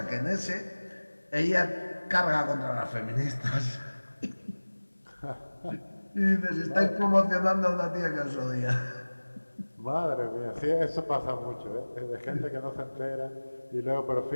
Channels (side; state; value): both; inverted; correlation -1.00